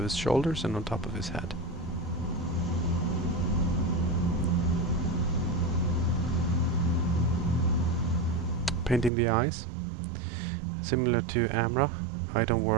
his shoulders and on top of his head. Painting the eyes. Similar to Amra, I don't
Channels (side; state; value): left; drops out; at 9.1 s